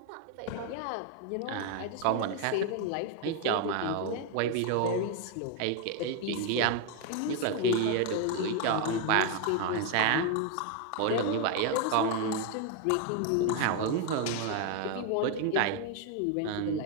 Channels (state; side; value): different; both; correlation 0.01